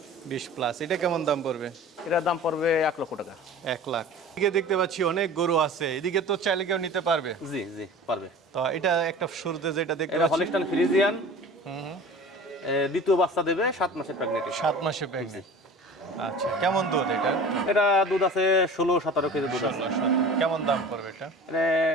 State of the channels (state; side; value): normal; both; correlation 0.39